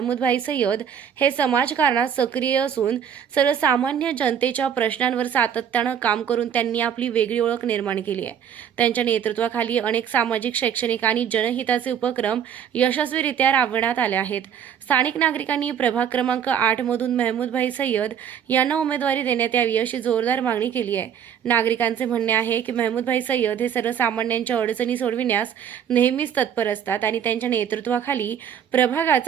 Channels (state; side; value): quieter; left; 8.6 dB